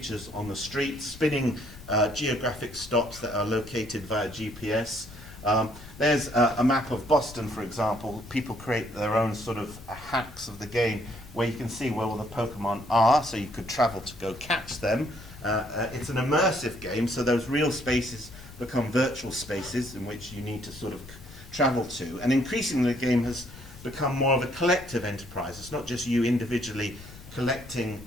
on the street, spinning geographic stops that are located via GPS. There's a map of Boston, for example. People create their own sort of hacks of the game where you can see where all the Pokemon are, so you could travel to go catch them. It's an immersive game, so those real spaces become virtual spaces in which you need to sort of travel to. And increasingly the game has become more of a collective enterprise. It's not just you individually collecting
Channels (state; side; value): noise; left; rumble, 17 dB below the sound